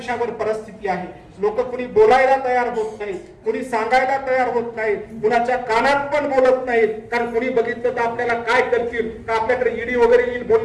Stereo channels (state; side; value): identical; both; correlation 1.00